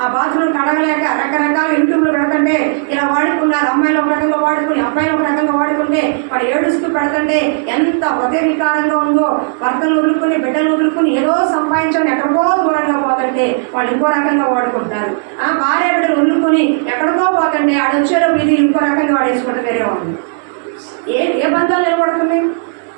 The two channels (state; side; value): silent; left; digital silence